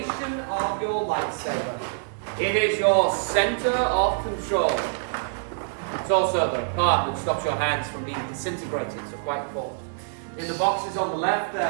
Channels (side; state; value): left; silent; digital silence